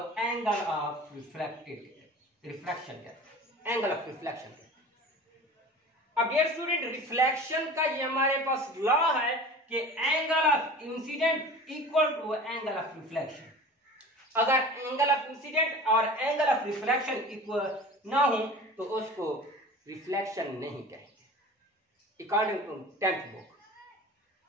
एंगल ऑफ रिफ्लेक्शन कहते हैं, एंगल ऑफ रिफ्लेक्शन कहते हैं। अब ये स्टूडेंट रिफ्लेक्शन का ये हमारे पास लॉ है कि angle of incident equal to angle of reflection. अगर एंगल ऑफ इंसिडेंट और एंगल ऑफ रिफ्लेक्शन इक्वल ना हो तो उसको रिफ्लेक्शन नहीं कहेंगे, अकॉर्डिंग टू 10th बुक।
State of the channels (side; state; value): both; normal; correlation 0.39